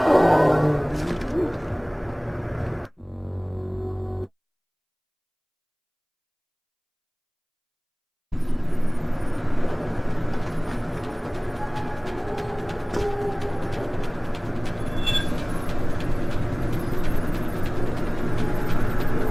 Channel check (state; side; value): identical; both; correlation 1.00